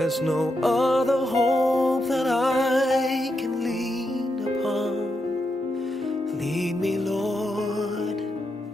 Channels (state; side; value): normal; both; correlation 0.84